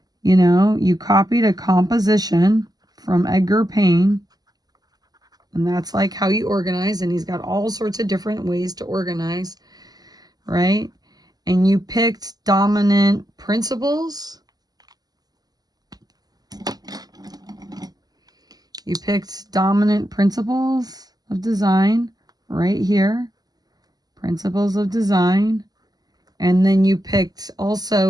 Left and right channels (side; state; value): left; late; 0.19 ms